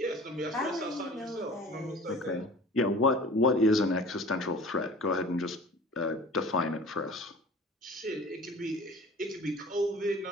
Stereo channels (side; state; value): both; normal; correlation 0.43